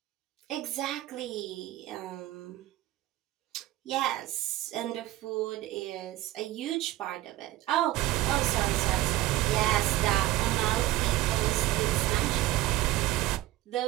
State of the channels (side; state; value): left; quieter; 16.2 dB